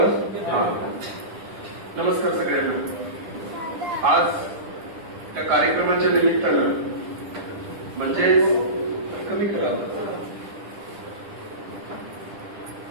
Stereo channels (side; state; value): left; late; 10 ms